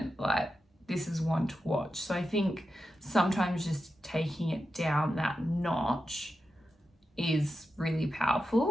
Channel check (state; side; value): normal; both; correlation 0.90